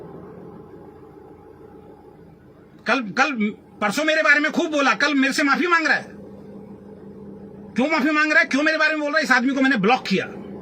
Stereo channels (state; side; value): identical; both; correlation 1.00